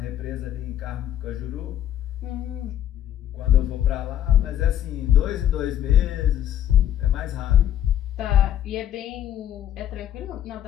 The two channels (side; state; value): right; quieter; 11.1 dB